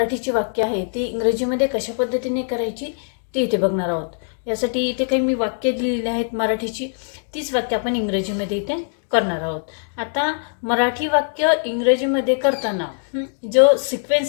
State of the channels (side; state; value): right; silent; digital silence